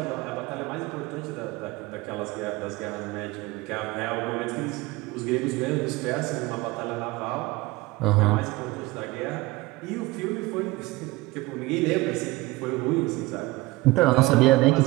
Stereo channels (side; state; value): left; quieter; 20.8 dB